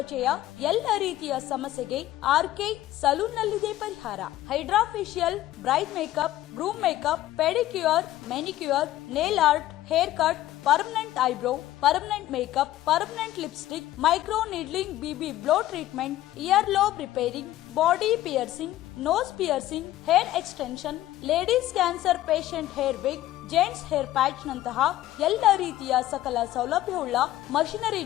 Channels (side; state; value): right; quieter; 14.5 dB